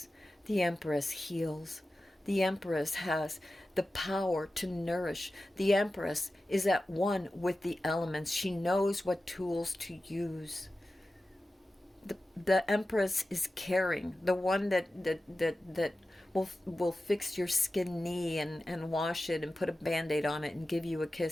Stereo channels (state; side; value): normal; both; correlation 0.94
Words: The Empress heals. The Empress has the power to nourish. The Empress is at one with the elements. She knows what tools to use. The Empress is caring. The one that will fix your skin knee and wash it and put a Band-Aid on it and give you a